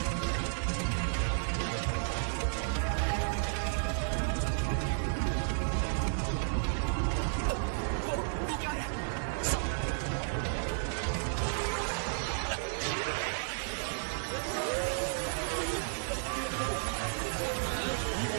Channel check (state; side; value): silent; left; digital silence